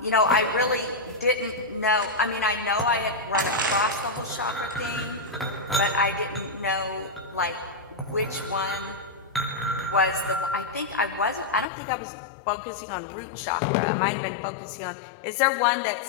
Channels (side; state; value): right; drops out; at 11.7 s